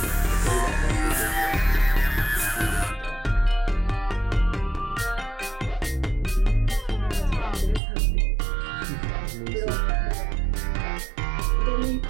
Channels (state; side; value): drops out; left; at 7.8 s